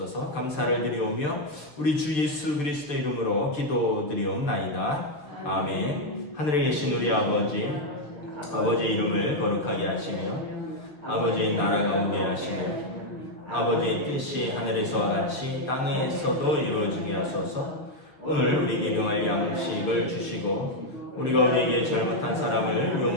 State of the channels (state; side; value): late; right; 6.6 ms